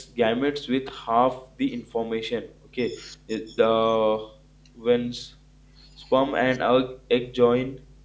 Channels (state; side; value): identical; both; correlation 1.00